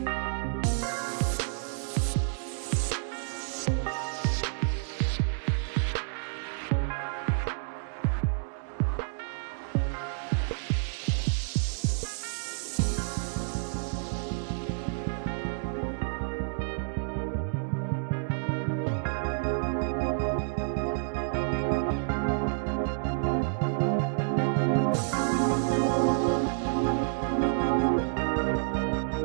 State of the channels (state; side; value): silent; left; digital silence